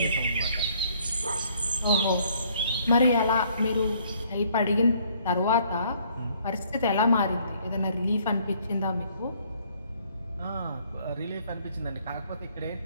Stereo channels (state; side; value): inverted; both; correlation -0.62